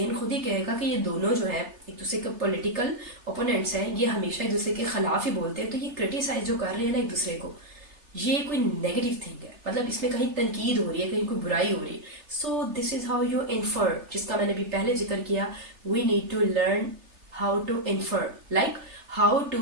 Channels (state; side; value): late; left; 3.3 ms